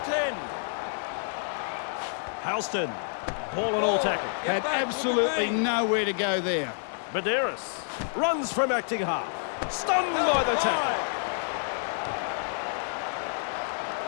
to 10. Halston, ball and all tackle. Had absolutely nowhere to go there. Medeiros runs from acting half. Stunned by the tackle.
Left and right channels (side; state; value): right; silent; digital silence